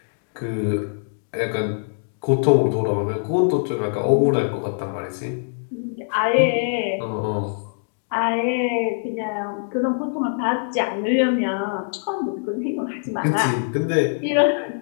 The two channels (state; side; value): silent; right; digital silence